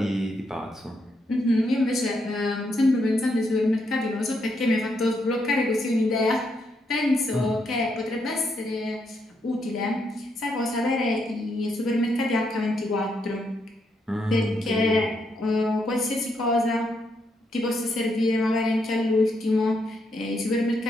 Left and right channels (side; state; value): both; normal; correlation 0.78